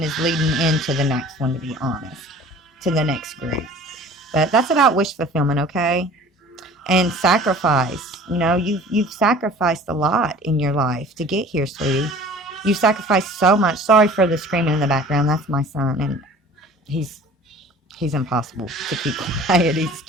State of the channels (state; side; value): normal; both; correlation 0.46